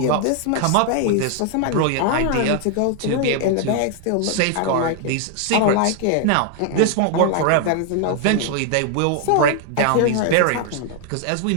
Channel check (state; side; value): different; both; correlation 0.00